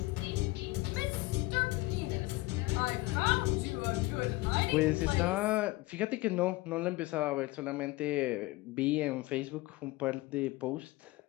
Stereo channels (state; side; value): quieter; right; 20.8 dB